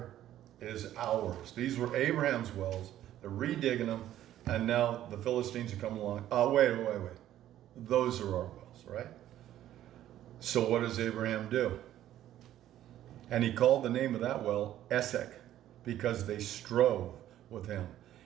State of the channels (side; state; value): left; quieter; 12.5 dB